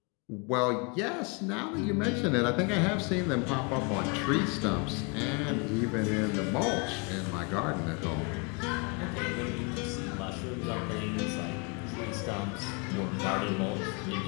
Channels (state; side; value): quieter; right; 32.8 dB